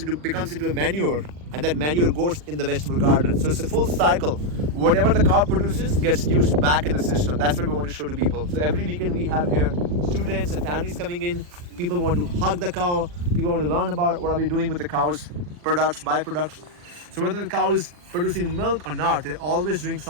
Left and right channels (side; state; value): left; late; 40 ms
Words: becomes into a manure, and that manure goes in the vegetable garden. So it's a full cycle. Whatever the cow produces gets used back in the system. That's what we want to show to people. So every weekend we have here students and families coming in. People want to hug the cow. People want to learn about what are we doing with the cow's products, byproducts. So whether the cow is producing milk or not, they're always doing